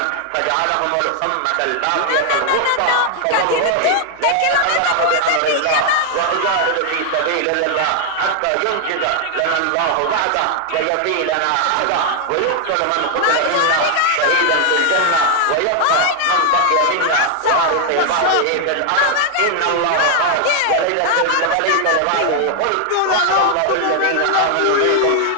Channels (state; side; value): different; both; correlation 0.00